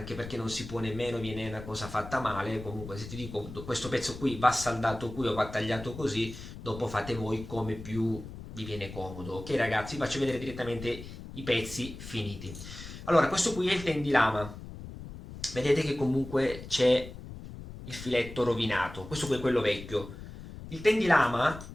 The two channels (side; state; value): left; noise; rumble, 12 dB below the sound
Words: perché non si può nemmeno, viene una cosa fatta male. Comunque se ti dico questo pezzo qui va saldato qui o va tagliato così, dopo fate voi come più vi viene comodo. Ok ragazzi, vi faccio vedere direttamente i pezzi finiti. Allora, questo qui è il tendilama. Vedete che comunque c'è il filetto rovinato. Questo qui è quello vecchio. Il tendilama,